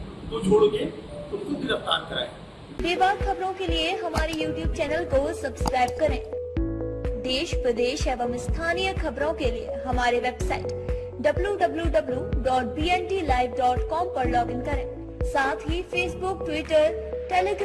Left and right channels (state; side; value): identical; both; correlation 1.00